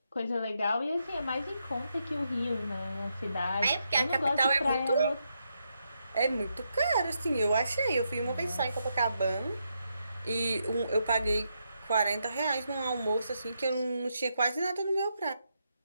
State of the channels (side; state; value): both; inverted; correlation -0.81